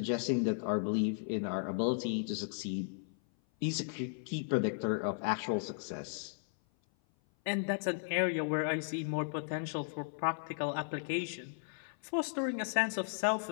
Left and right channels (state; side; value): silent; right; 54 dB below the other